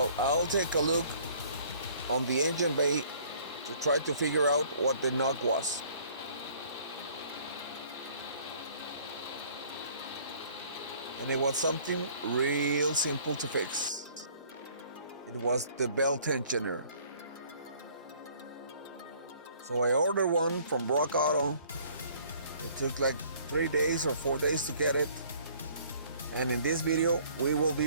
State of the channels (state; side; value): inverted; both; correlation -0.56